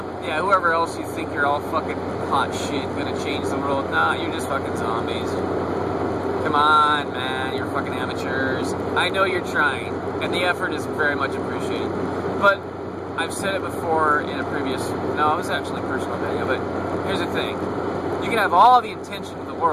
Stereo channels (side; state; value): both; identical; correlation 1.00